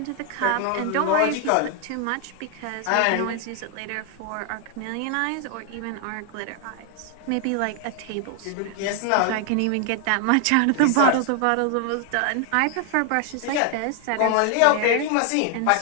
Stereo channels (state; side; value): different; both; correlation 0.00